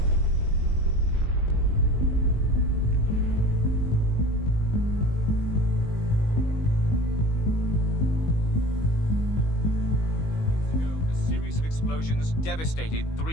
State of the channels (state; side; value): late; right; 19 ms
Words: A series of explosions devastated